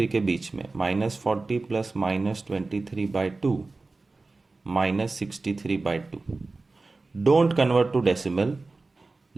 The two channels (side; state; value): left; quieter; 3.5 dB